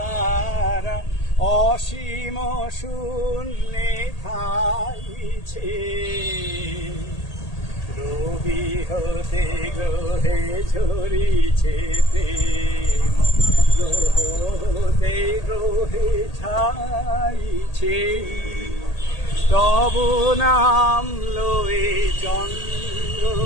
অসীম শূন্যে থাইছে, রবি হতে গ্রহে ঝরিছে প্রেম, গ্রহ হতে গ্রহে ছাইছে। তব নাম লয়ে চন্দ্র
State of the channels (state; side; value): late; right; 1.8 ms